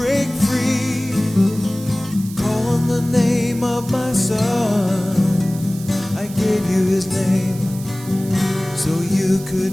free. Call on the name of my son, I gave you his name so you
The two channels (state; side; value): noise; right; hiss, 16 dB below the sound